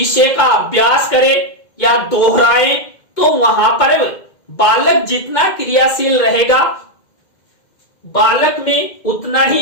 का अभ्यास करें या दोहराएं, तो वहां पर बालक जितना क्रियाशील रहेगा, बालक में उतना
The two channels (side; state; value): right; late; 2.1 ms